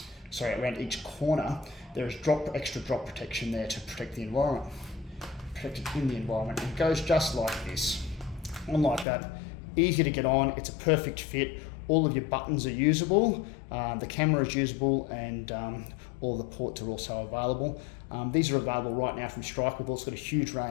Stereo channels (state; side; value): drops out; right; at 9.1 s